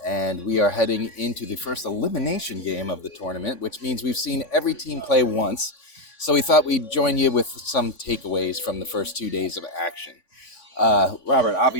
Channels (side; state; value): right; late; 3.5 ms